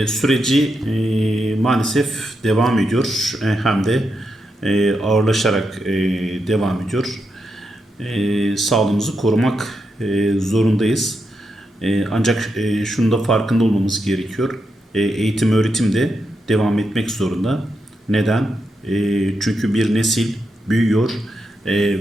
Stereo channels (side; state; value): both; normal; correlation 0.84